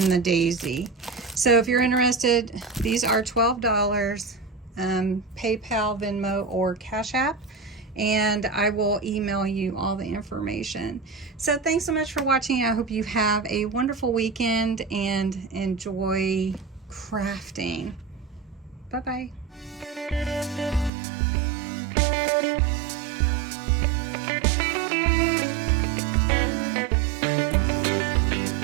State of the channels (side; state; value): left; drops out; at 20.9 s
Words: the daisy. So if you're interested, these are $12, PayPal, Venmo, or Cash App, and I will email you all the information. So thanks so much for watching. I hope you have a wonderful weekend and enjoy crafting. Bye-bye.